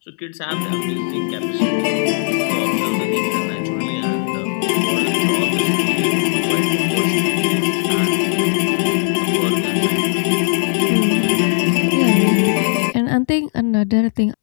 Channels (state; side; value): silent; right; digital silence